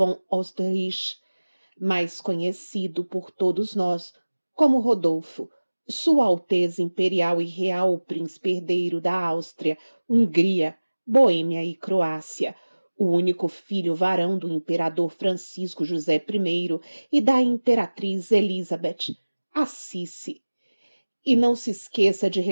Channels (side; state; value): both; inverted; correlation -1.00